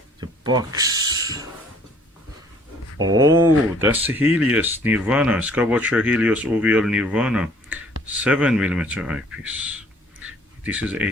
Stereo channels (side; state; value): both; normal; correlation 0.57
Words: The box. Oh, that's the Helios Nirvana, Skywatcher Helios OVL Nirvana 7mm eyepiece. This is